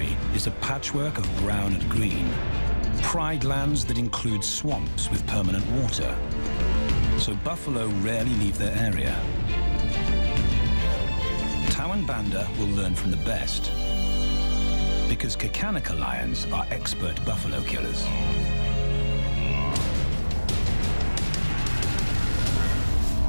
is a patchwork of brown and green. Pride lands that include swamps with permanent water. So buffalo rarely leave their area. Tawan Banda will learn from the best, because Kakanika lions are expert buffalo killers.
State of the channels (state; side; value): inverted; both; correlation -1.00